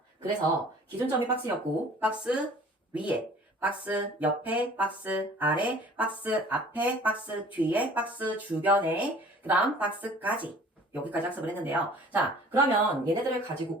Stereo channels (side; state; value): both; normal; correlation 0.49